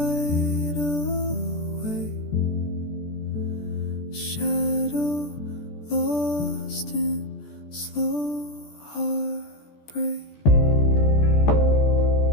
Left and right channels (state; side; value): late; right; 14 ms